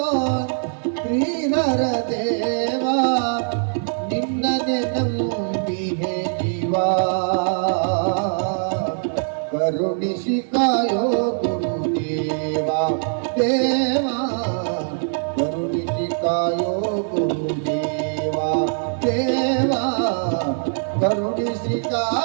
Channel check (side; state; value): left; silent; 63 dB below the other